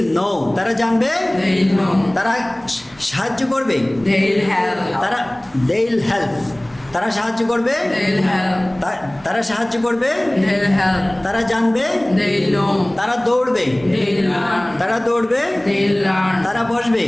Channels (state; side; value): noise; right; hum, 28 dB below the sound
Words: নো, তারা জানবে, তারা সাহায্য করবে, তারা দেইল হেল্প, তারা সাহায্য করবে, তারা সাহায্য করবে, তারা জানবে, তারা দৌড়বে, তারা দৌড়বে, তারা বসবে,